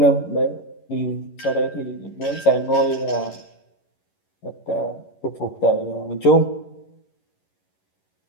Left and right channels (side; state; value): right; late; 11 ms